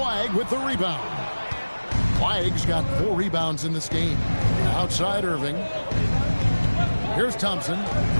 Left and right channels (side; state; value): both; inverted; correlation -1.00